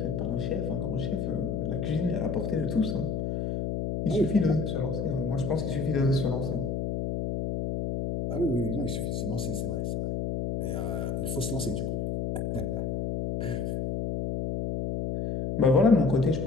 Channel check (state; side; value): noise; left; hum, 1 dB below the sound